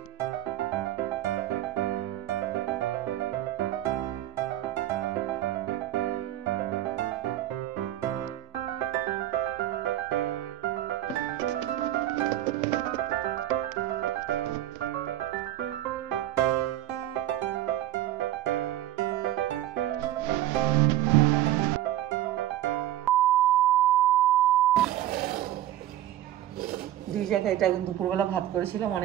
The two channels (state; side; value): quieter; left; 13.3 dB